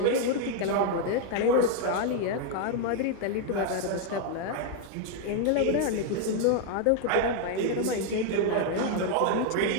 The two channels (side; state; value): both; different; correlation 0.00